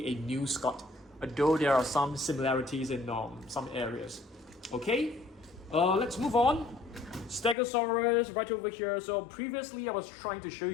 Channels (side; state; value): right; drops out; at 7.6 s